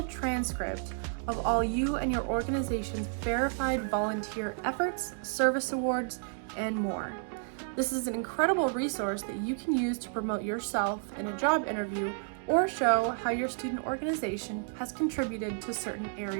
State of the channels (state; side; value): silent; left; 57 dB below the other